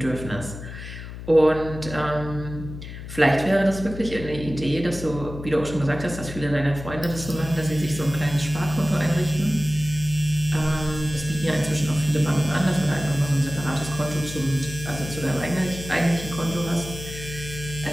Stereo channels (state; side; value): noise; left; hum, 11 dB below the sound